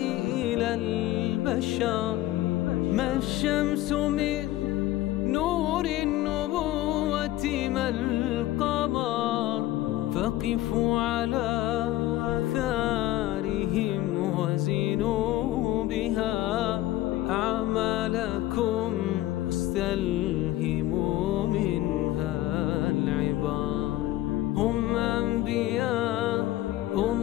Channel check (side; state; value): right; quieter; 15.5 dB